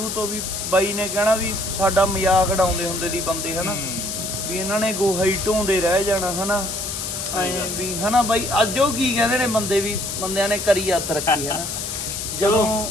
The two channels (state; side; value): noise; left; hiss, 4 dB below the sound